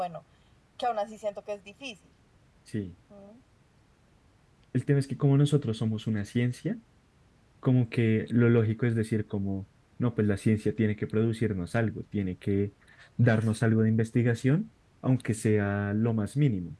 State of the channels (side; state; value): both; identical; correlation 1.00